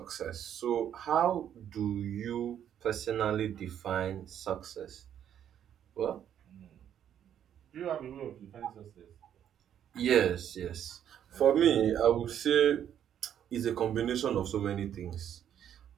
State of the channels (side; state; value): left; quieter; 9.8 dB